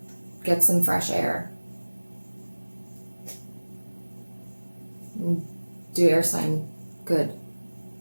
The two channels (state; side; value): inverted; both; correlation -1.00